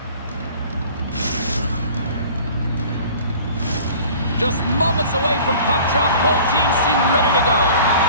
Just moments away from puck drop, both teams seem ready to go.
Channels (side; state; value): both; inverted; correlation -0.46